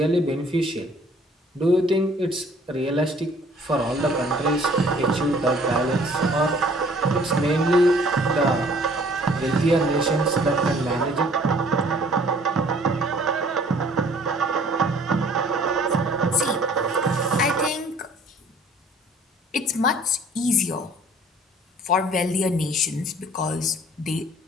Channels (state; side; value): normal; both; correlation 0.55